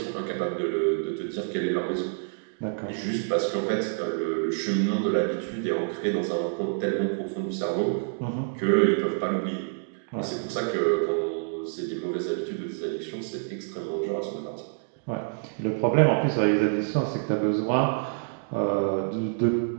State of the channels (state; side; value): silent; left; digital silence